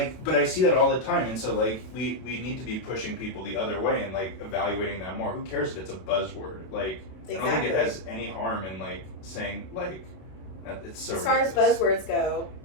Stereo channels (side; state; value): right; late; 32 ms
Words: but I see that all the time, and so like we need to be pushing people the other way and like evaluating that more. Who cares if it's a buzzword? Like, I don't think it has any harm in like saying like it's so. As far as buzzwords go,